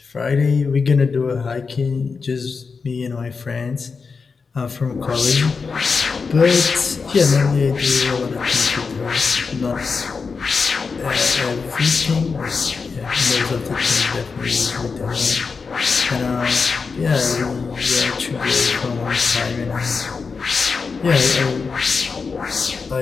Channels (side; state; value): right; quieter; 5.0 dB